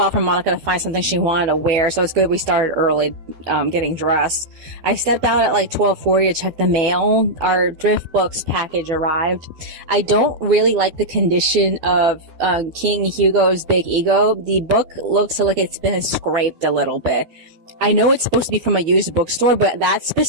for Monica to find something she wanted to wear, so it's good we started early, getting dressed. I stepped out at like 12:40 to check the mail. Our thrift books package arrived. I don't really like the condition of King Hugo's Big Ego. The book looks like it's been scraped a little bit. I know it's supposed to be from a used bookstore, but that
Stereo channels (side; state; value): left; late; 12 ms